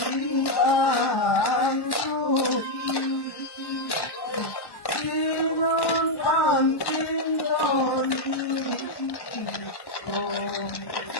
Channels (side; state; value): right; late; 1.1 ms